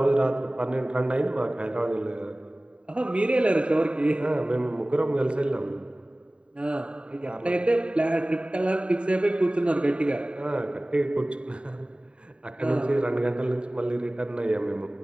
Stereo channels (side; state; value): left; late; 0.054 ms